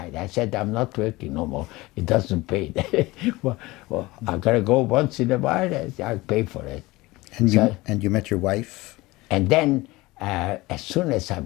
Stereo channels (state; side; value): quieter; right; 20.7 dB